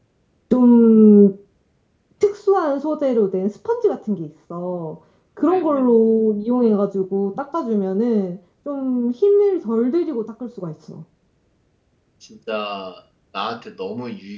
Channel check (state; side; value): identical; both; correlation 1.00